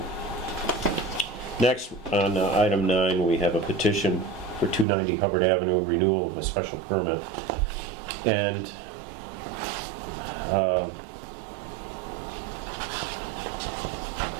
Next, on item 9, we have a petition for 290 Hubbard Avenue, renewal of a special permit. And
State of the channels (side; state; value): left; drops out; at 4.9 s